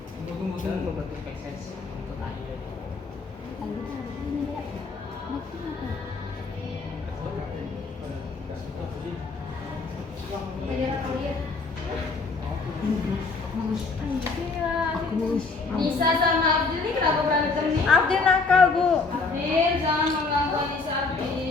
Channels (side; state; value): right; quieter; 4.1 dB